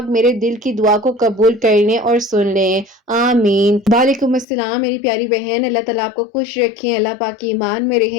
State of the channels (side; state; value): right; drops out; at 4.5 s